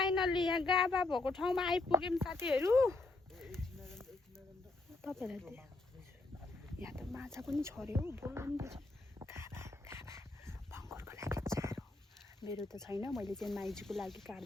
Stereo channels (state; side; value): quieter; right; 3.2 dB